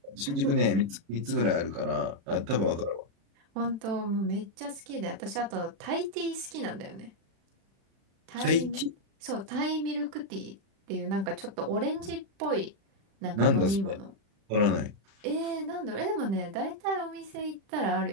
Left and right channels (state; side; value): late; left; 36 ms